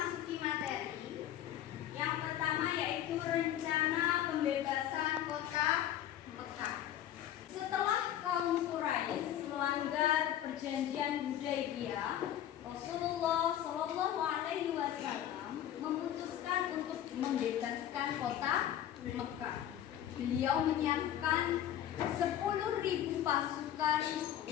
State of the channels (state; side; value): quieter; right; 11.4 dB